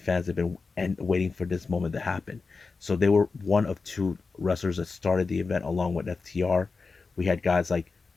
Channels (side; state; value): right; quieter; 4.4 dB